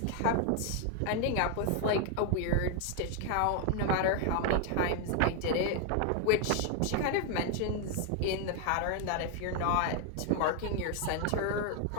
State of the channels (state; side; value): different; both; correlation 0.01